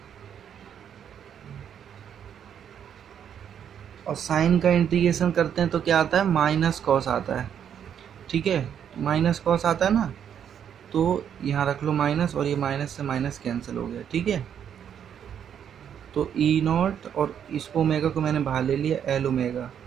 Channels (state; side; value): quieter; left; 8.7 dB